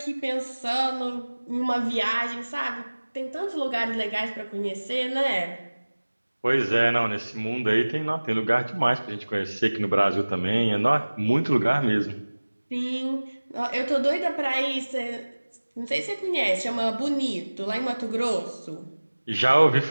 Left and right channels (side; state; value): both; inverted; correlation -1.00